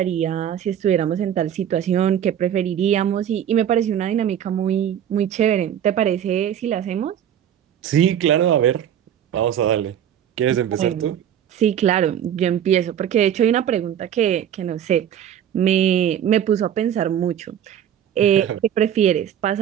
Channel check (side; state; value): left; quieter; 9.8 dB